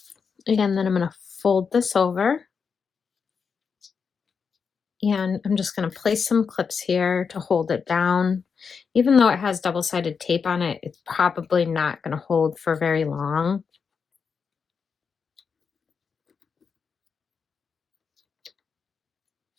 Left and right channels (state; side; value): quieter; right; 5.9 dB